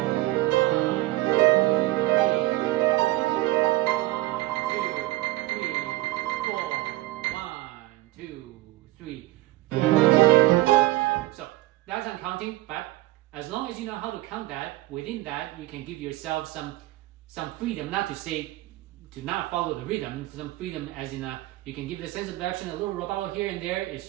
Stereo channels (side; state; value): left; quieter; 18.2 dB